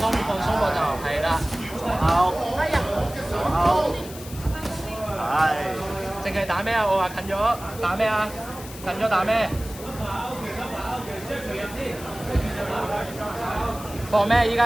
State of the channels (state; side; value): noise; left; hiss, 15 dB below the sound